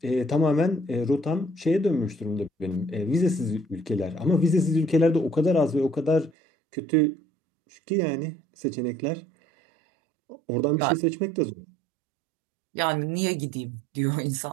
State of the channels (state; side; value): drops out; left; at 6.3 s